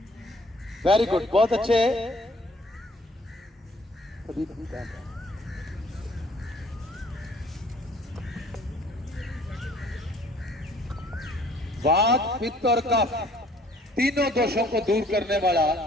वेरी गुड, बहुत अच्छे। वात, पित्त और कफ तीनों दोषों को दूर करने वाला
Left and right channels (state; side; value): normal; both; correlation 0.58